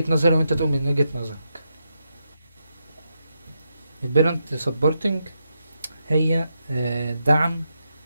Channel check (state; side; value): inverted; both; correlation -0.84